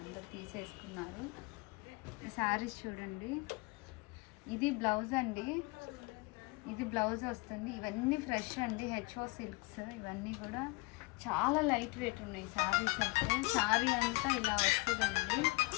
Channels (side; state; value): right; quieter; 24.8 dB